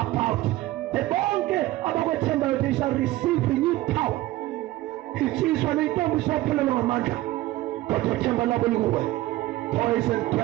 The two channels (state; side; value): quieter; left; 16.9 dB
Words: The bonke about what they shall receive renewed power. It is when they don't stop pulling on Amanda. But boys and